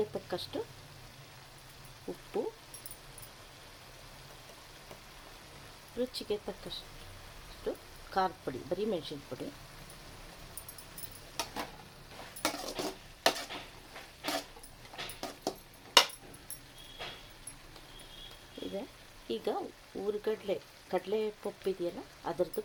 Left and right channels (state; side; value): identical; both; correlation 1.00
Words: ತಕ್ಕಷ್ಟು ಉಪ್ಪು, ರುಚಿಗೆ ತಕ್ಕಷ್ಟು ಖಾರದ ಪುಡಿ, ಬರೀ ಮೆಣಸಿನ ಪುಡಿ, ಇದೆ. ಈಗ ಕಡಲೆ ಪಪ್ಪು ಇದೆಯಲ್ಲ ಅದರದ್ದು